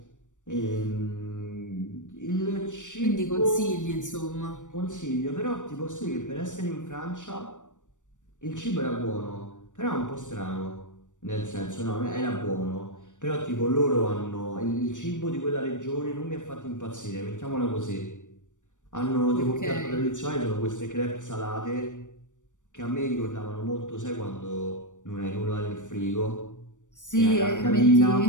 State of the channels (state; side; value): late; right; 0.86 ms